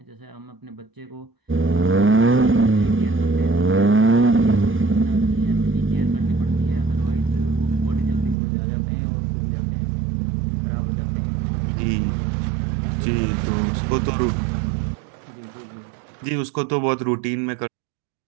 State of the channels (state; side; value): drops out; left; at 8.3 s